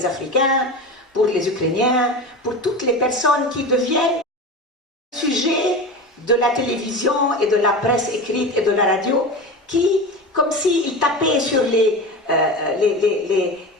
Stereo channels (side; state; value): both; normal; correlation 0.27